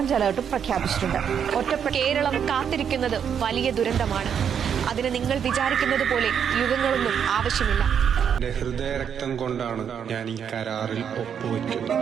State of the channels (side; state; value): left; quieter; 7.9 dB